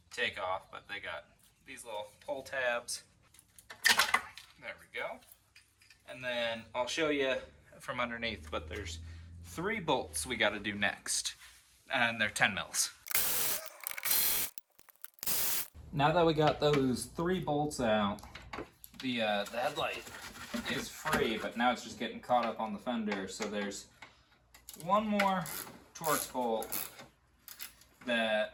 take off. But they got these little pull tabs. There we go. And then I'll show you from underneath, but there's 3 bolts we got to do next. And they're 10 mils. Now that we got those 3 bolts out, the headlight is free, but now it's just getting caught up on the fender. So there's one more Etorx bolt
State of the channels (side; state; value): both; identical; correlation 1.00